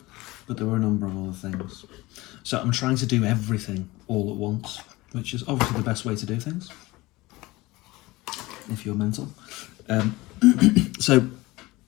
But there were a number of other things. So I'm trying to do everything all at once, which is obviously the best way to do things if you're mental. So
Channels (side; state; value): right; quieter; 20.6 dB